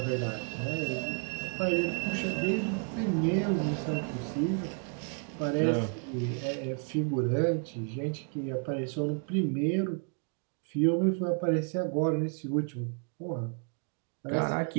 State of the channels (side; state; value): left; quieter; 39.3 dB